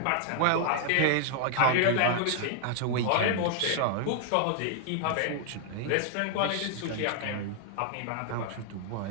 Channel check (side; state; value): both; different; correlation 0.00